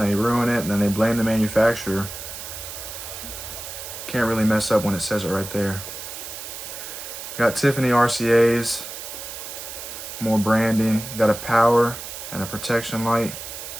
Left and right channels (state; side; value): noise; right; hiss, 10 dB below the sound